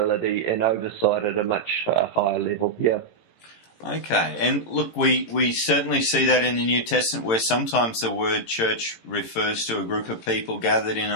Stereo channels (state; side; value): late; right; 18 ms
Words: and oversight at a much higher level. Yeah. Okay, and look, we certainly see that in the New Testament, where sometimes the word church refers to a group of people gathered in